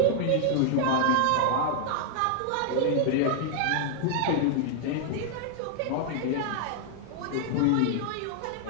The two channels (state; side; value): different; both; correlation 0.00